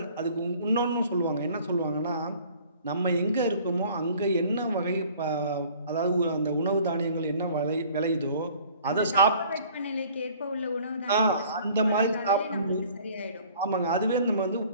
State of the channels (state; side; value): inverted; both; correlation -0.52